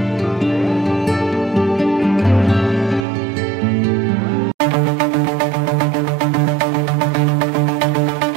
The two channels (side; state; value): left; drops out; at 3.1 s